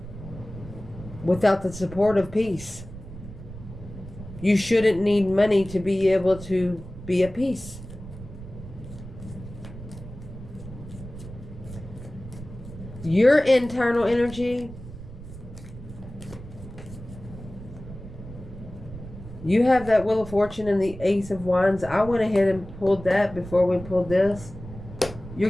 Without the support of peace. You shouldn't need money to be able to be at peace. Your internal energy. You have that Wheel of Fortune and the Ace of Wands. I went ahead and pulled that before we pulled this. You're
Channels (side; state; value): right; noise; rumble, 14 dB below the sound